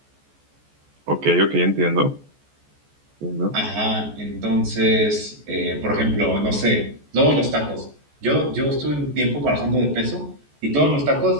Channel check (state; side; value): late; left; 14 ms